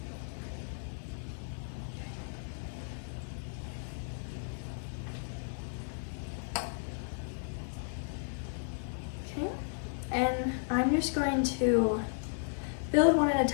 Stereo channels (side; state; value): right; silent; 55 dB below the other